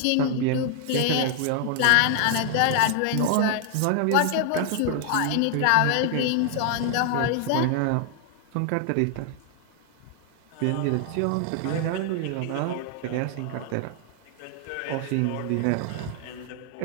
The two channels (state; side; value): different; both; correlation 0.00